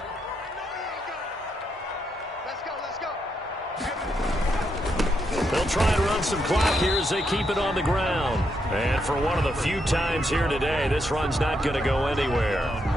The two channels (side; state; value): both; normal; correlation 0.80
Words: They'll try and run some clock here as they keep it on the ground. And for one of the few times here today, this run's not going to go anywhere.